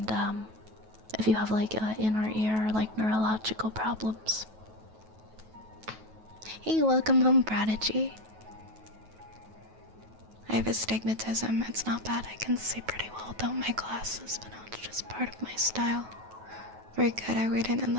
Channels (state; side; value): late; left; 9.3 ms